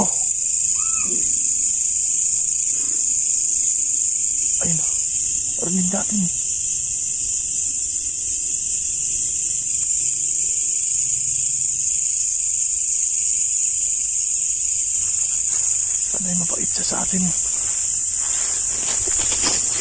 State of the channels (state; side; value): identical; both; correlation 1.00